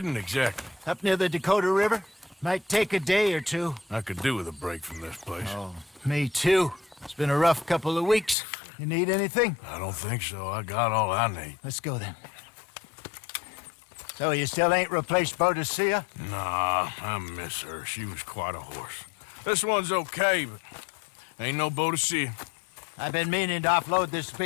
exactly? Up near the Dakota River. Might take a day or two. I could do with a break from this place. Oh, me too. It's been a rough couple of weeks. You need anything? I don't think so. I got all I need. Let's go then. So you still ain't replaced Boadicea? Nah, I miss her. She was quite a horse. This one's okay, but ain't no Boadicea. I've been meaning to offload this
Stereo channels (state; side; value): drops out; right; at 8.3 s